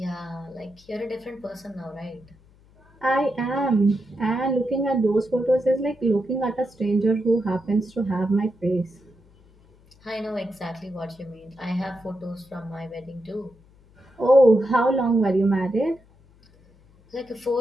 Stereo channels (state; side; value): noise; left; hum, 28 dB below the sound